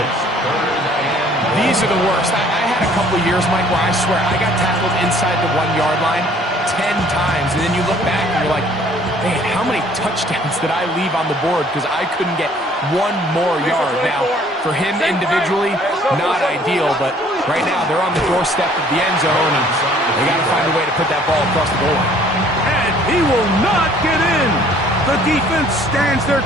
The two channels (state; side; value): normal; both; correlation 0.57